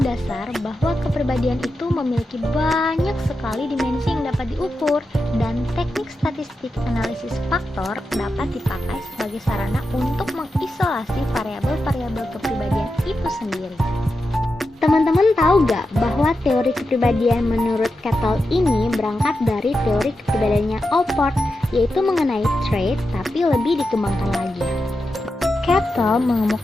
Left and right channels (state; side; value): normal; both; correlation 0.89